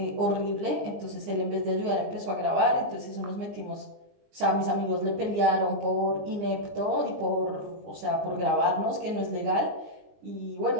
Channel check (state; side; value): late; left; 20 ms